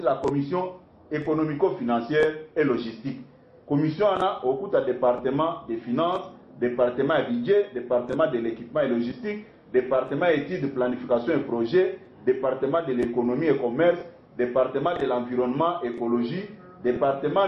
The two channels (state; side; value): identical; both; correlation 1.00